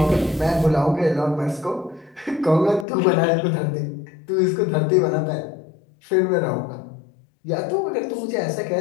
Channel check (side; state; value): right; drops out; at 2.9 s